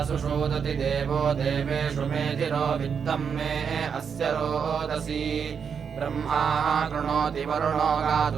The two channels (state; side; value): quieter; left; 6.7 dB